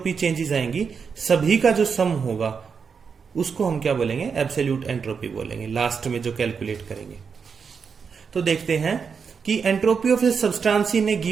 चेंजेस आएंगी सभी का जो सम होगा उसको हम क्या बोलेंगे, एब्सोल्यूट एंट्रोपी बोलेंगे लास्ट में जो कैलकुलेट करेंगे। तो देखते हैं कि entropy of a substance in a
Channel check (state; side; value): quieter; left; 6.0 dB